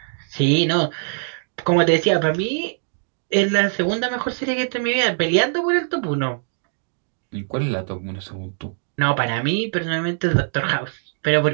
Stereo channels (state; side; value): silent; left; digital silence